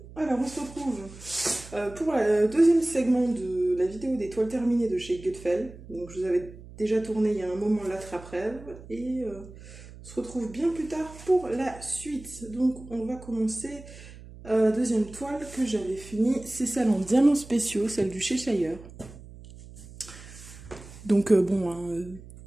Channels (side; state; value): right; noise; hum, 17 dB below the sound